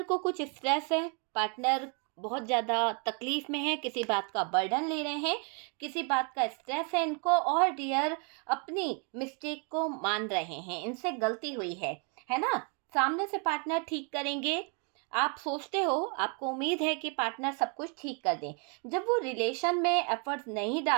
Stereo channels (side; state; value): left; quieter; 37.5 dB